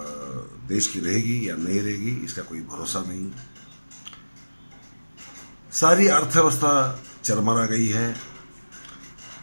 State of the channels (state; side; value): inverted; both; correlation -1.00